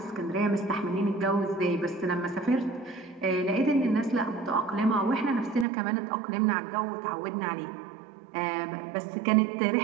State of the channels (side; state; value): left; drops out; at 5.7 s